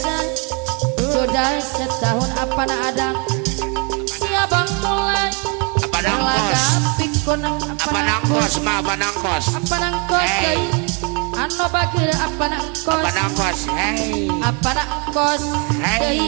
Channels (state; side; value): quieter; left; 34.0 dB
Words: sudah setahun apa nak ada siabang mulai Apa nangkos? pikun Apa nangkos? Ma apa nangkos? apa nangkos Hey. anu bagir apa nangkos Apa nangkos? Hey. apa nangkos Hey. deui